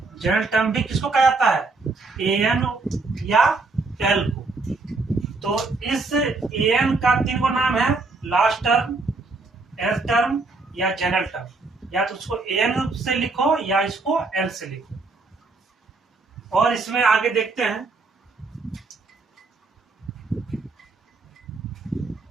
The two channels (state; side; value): quieter; left; 3.7 dB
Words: general term भी किसको कहा जाता है, an या l को। तो इस an का 3 को नाम है, लास्ट टर्म, nth टर्म या जनरल टर्म। या तो उसको an से लिखो या इसको l से लिखो। और इसमें आगे देखते हैं,